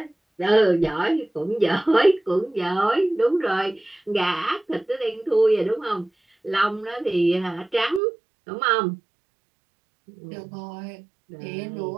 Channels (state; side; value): drops out; left; at 8.0 s